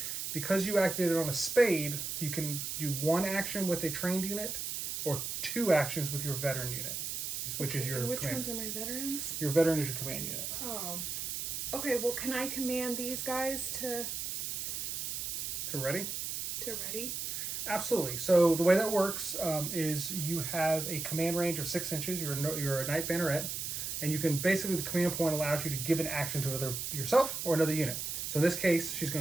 Because you activated on a spade, you can do 1 action with a trained unit or 2 actions with your veteran unit, which is your And which command. ones are my veterans? Your veteran is your command unit. Oh. Okay, well, can I command these guys to Ready? ready? Absolutely. So the way that works is you have a command range of 6 inches. You're a knight banneret, and you can basically the command point allows you to give an action to either yourself or another unit. So in this case, she's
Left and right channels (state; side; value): noise; right; hiss, 3 dB below the sound